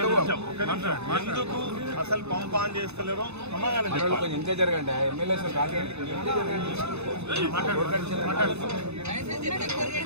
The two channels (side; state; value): left; late; 0.80 ms